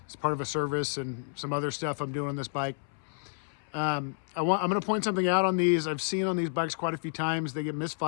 It's part of a service and some other stuff I'm doing on this bike. I'm going to point something out on these. I've seen on these bikes quite a few times. They get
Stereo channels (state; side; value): silent; right; 58 dB below the other